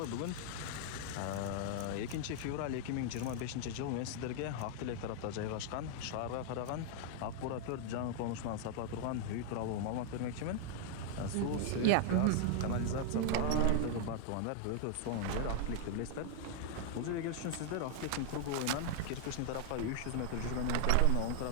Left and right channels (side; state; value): both; different; correlation 0.00